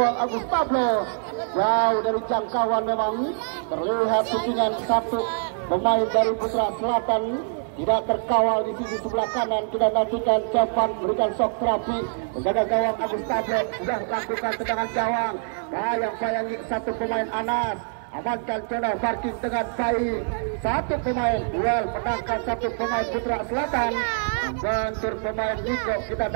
Agus Tablo jauh dari jangkauan. Memang terlihat shootingan satu pemain dari Putra Selatan tidak terkawal di sisi sebelah kanan. Kita nantikan cepat berikan shock terapi. Penjaga gawang Agus Tablo sudah lakukan tendangan gawang. Yang payangi satu pemain Anas. Amankan zona parking dengan baik. Satu pemain duel menangkan satu pemain Putra Selatan. Bentur pemain Niko, kita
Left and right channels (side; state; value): left; silent; digital silence